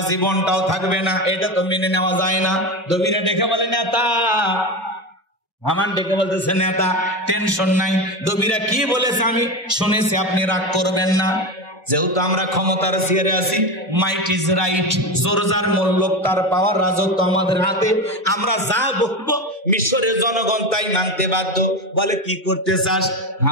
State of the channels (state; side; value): normal; both; correlation 0.20